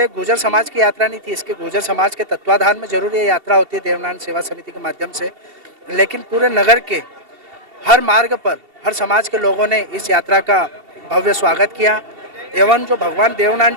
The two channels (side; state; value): left; late; 2.7 ms